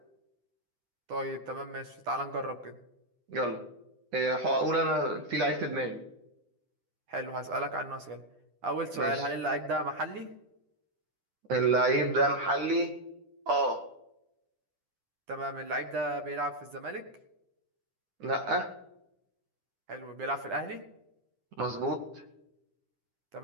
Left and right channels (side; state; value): left; late; 10 ms